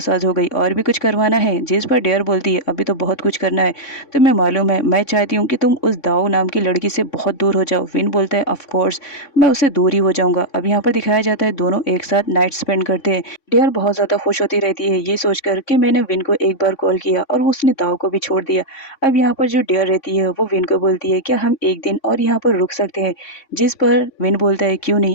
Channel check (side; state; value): right; late; 3.6 ms